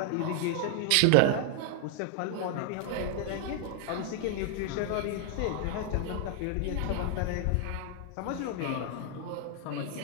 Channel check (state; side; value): different; both; correlation 0.00